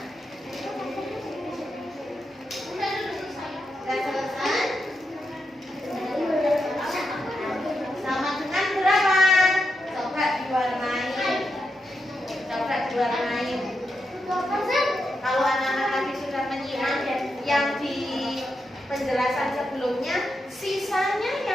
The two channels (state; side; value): normal; both; correlation 0.85